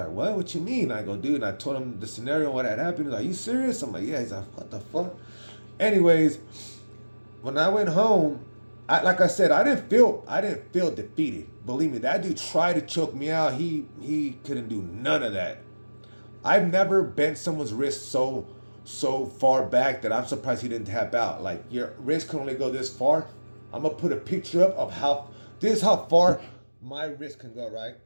what you mean? I go, dude. And I told him the scenario, what had happened. He's like, you serious? I'm like, yeah. He's like, what the fuck? Anyways, when I went home, like I said, I didn't feel defeated. Believe me, that dude tried to choke me out. He couldn't do none of that. I've never bent someone's wrist so far back that I'm surprised he didn't tap out. Like your wrist can only go this far. I'm gonna put a picture up of how this is how far my wrist can go, right?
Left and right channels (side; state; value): both; inverted; correlation -1.00